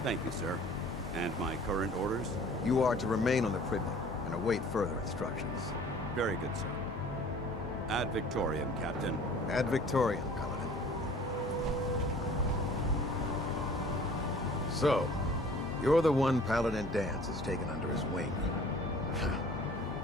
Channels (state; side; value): normal; both; correlation 0.49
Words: Thank you, sir. And my current orders? You are to remain on the Pridman and await further instructions. Very good, sir. Ad Victoriam, Captain. Ad Victoriam, Paladin. So, you're the one Paladin Danse has taken under his wing.